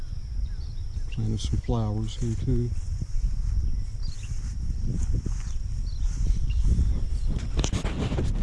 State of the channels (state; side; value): identical; both; correlation 1.00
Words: Planted some flowers here too.